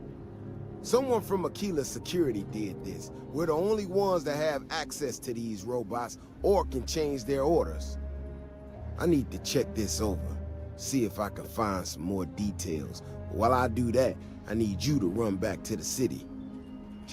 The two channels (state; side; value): identical; both; correlation 1.00